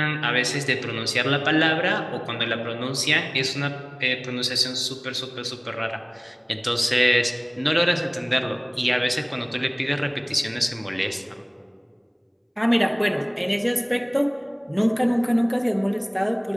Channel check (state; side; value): identical; both; correlation 1.00